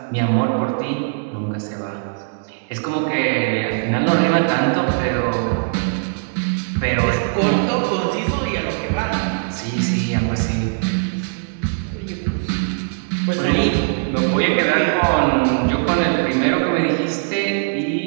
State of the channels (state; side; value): silent; left; digital silence